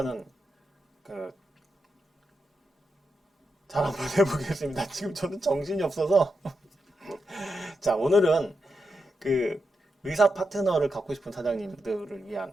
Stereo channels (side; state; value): both; normal; correlation 0.86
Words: 그 잘 한번 해보겠습니다. 지금 저는 정신이 없어서. 자, 오늘은 그 의사 파트너를 갖고 싶은 사장님들을 위한